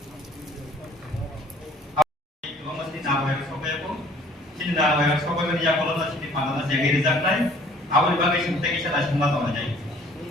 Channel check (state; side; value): normal; both; correlation 0.55